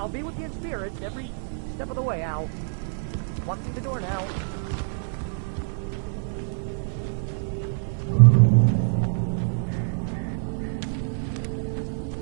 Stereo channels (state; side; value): silent; left; 61 dB below the other